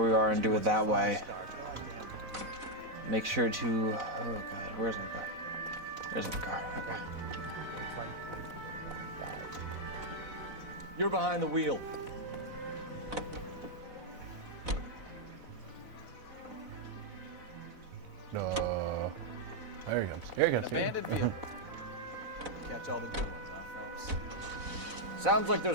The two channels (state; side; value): late; left; 4.0 ms